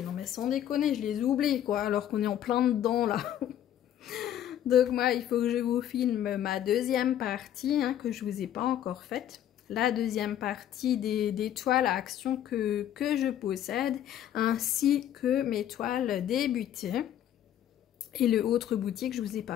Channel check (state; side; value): quieter; right; 11.0 dB